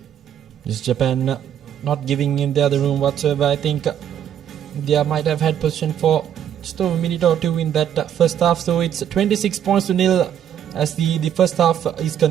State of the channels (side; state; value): left; quieter; 9.7 dB